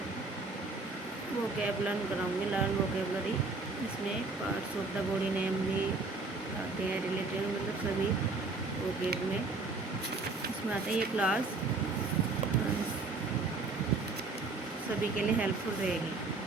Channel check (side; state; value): left; quieter; 3.7 dB